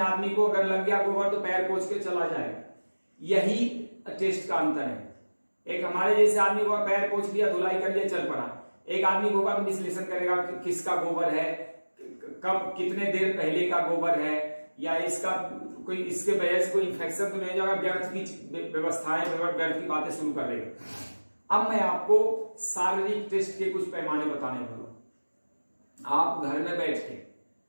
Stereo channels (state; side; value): inverted; both; correlation -1.00